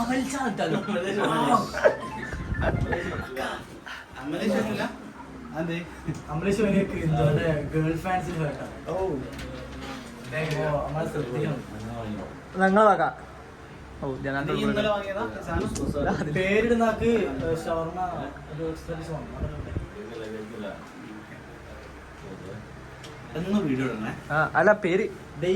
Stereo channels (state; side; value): identical; both; correlation 1.00